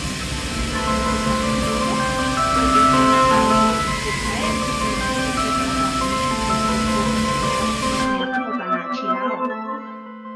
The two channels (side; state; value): both; identical; correlation 1.00